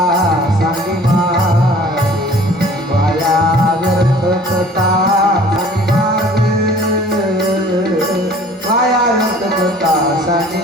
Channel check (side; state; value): both; normal; correlation 0.50